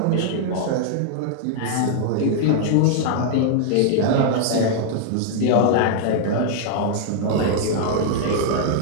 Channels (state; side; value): different; both; correlation -0.01